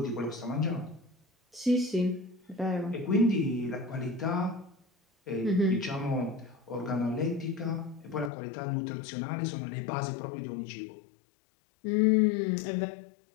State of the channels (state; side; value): drops out; right; at 8.3 s